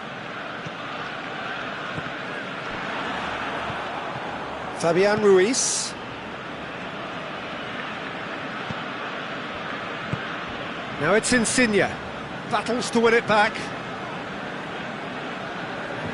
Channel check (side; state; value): both; identical; correlation 1.00